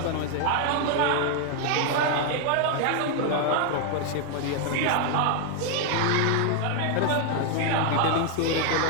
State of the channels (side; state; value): both; different; correlation 0.00